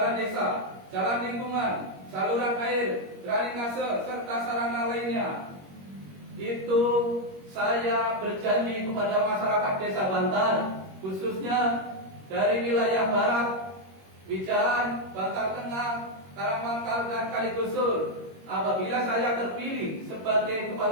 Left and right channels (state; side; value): late; left; 21 ms